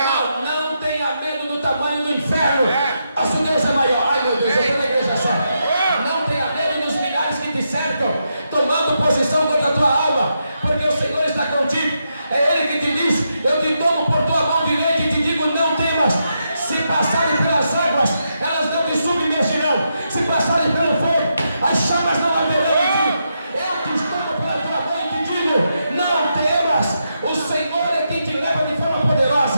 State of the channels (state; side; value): inverted; both; correlation -0.83